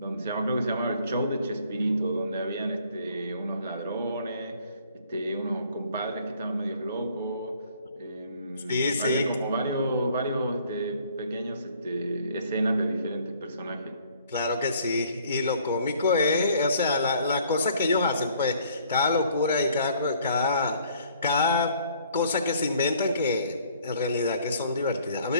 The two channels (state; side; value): inverted; both; correlation -0.60